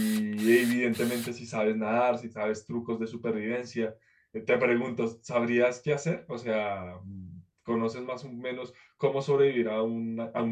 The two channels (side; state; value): both; identical; correlation 1.00